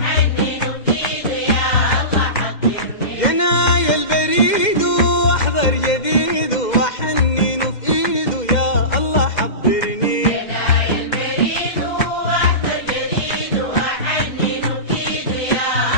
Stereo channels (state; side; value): late; right; 2.1 ms